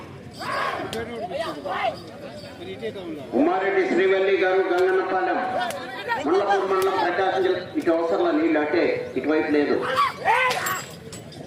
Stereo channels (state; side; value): identical; both; correlation 1.00